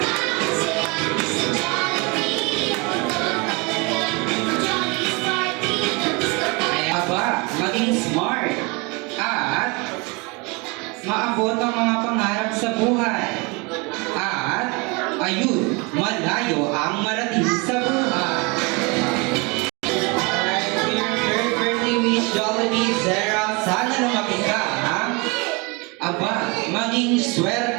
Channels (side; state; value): left; quieter; 28.7 dB